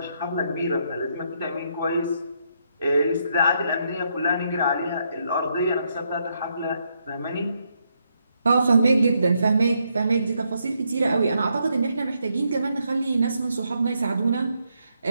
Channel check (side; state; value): both; inverted; correlation -0.77